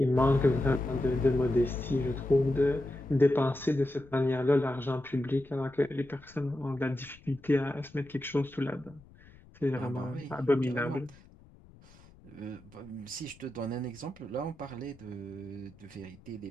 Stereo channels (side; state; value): left; noise; rumble, 24 dB below the sound